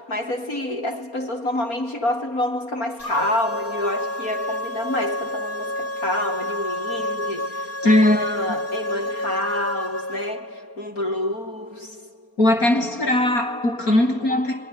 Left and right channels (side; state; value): right; late; 4.3 ms